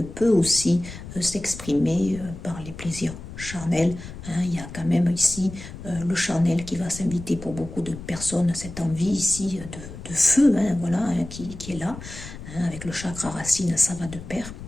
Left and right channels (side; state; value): left; noise; rumble, 12 dB below the sound